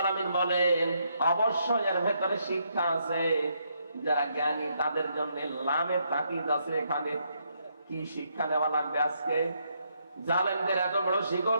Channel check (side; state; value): both; inverted; correlation -0.76